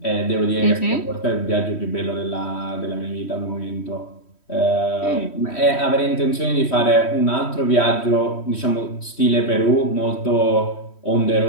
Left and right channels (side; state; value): right; late; 3.1 ms